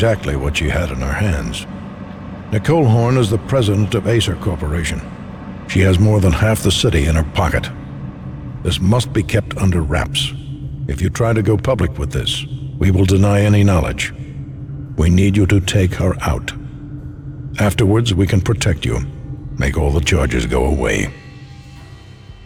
what she had in her hands. Nicole Horn is the president of Acer Corporation. She has more than half the city in her pocket. This must be kept under wraps. If you try to go public with this, we will deny any knowledge. We need you to take her out. Afterwards, we can protect you. Make all the charges go away.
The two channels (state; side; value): identical; both; correlation 1.00